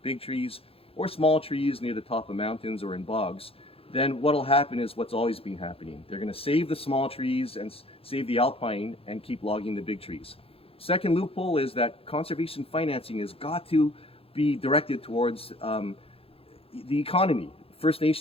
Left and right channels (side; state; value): right; late; 0.27 ms